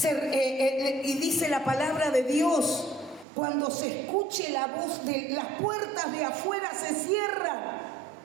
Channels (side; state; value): left; drops out; at 3.2 s